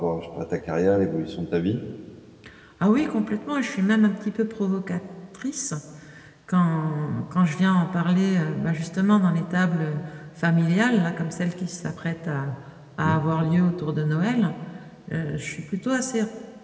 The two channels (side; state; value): both; identical; correlation 1.00